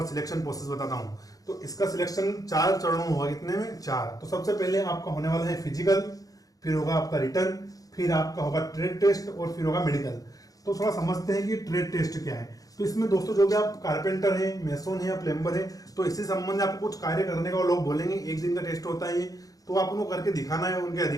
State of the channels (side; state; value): right; late; 0.17 ms